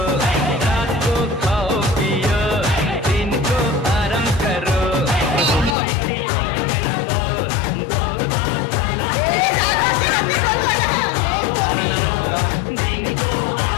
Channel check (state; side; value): drops out; right; at 5.8 s